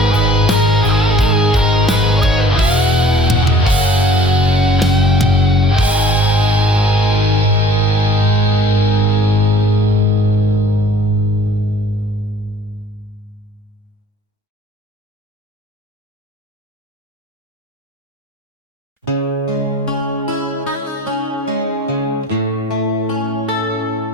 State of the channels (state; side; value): normal; both; correlation 0.50